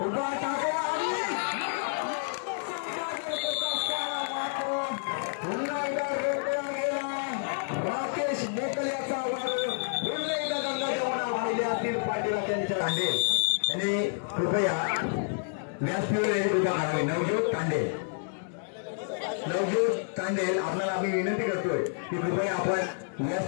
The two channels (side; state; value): right; silent; digital silence